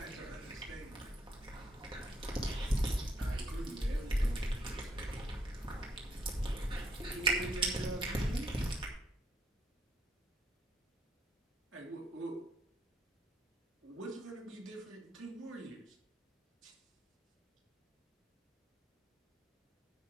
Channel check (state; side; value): normal; both; correlation 0.71